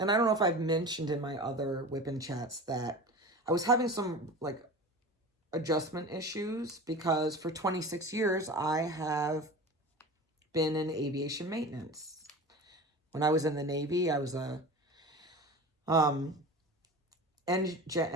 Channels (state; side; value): normal; both; correlation 0.33